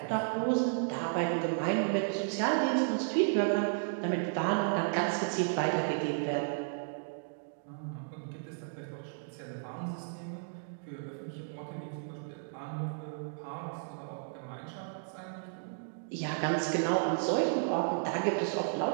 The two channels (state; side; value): silent; left; digital silence